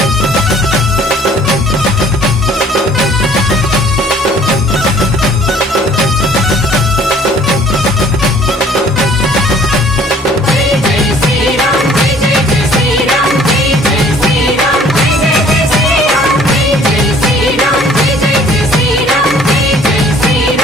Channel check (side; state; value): both; normal; correlation 0.56